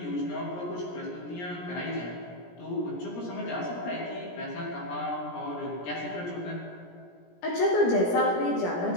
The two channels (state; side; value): late; right; 17 ms